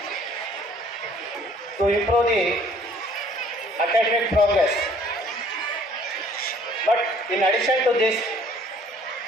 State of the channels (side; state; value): both; normal; correlation 0.57